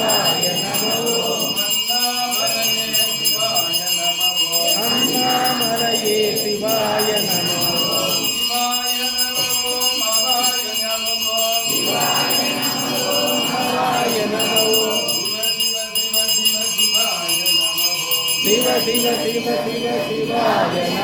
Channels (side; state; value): both; identical; correlation 1.00